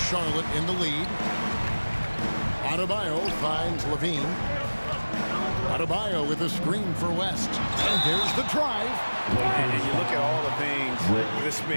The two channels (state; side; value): inverted; both; correlation -1.00